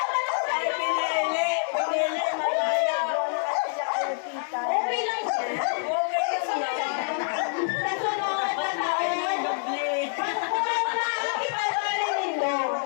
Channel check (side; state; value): right; silent; 60 dB below the other